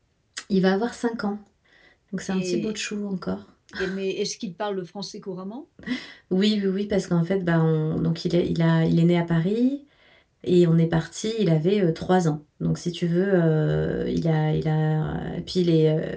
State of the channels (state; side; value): identical; both; correlation 1.00